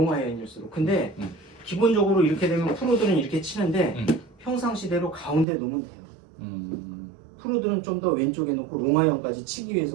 아이언일수록. 근데 기본적으로 이렇게 되면 프로들은 이렇게 치는데 평상시대로 가운데 놓으면 돼요. 프로들은 좀 더 왼쪽에 놓고 롱 아이언까지 치기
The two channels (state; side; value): drops out; left; at 5.5 s